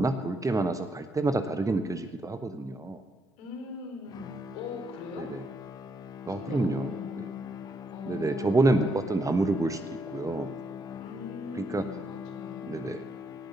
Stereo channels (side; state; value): both; normal; correlation 0.76